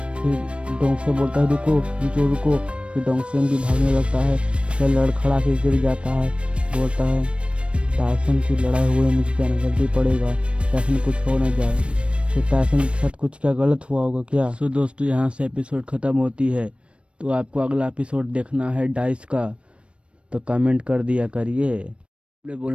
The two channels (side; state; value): left; late; 0.060 ms